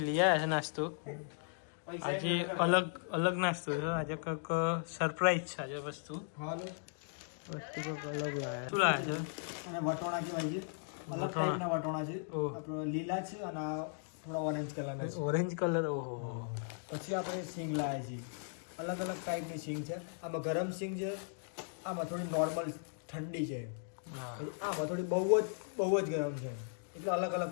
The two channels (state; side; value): silent; right; digital silence